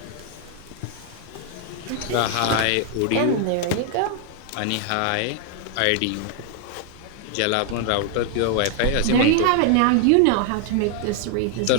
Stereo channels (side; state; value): both; different; correlation 0.00